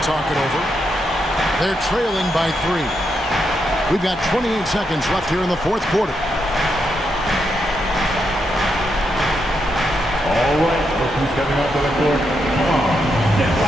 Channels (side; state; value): both; normal; correlation 0.82